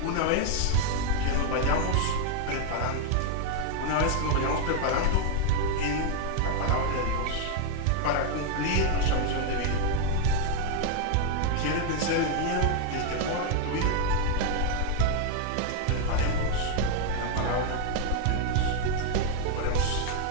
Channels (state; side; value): different; both; correlation 0.01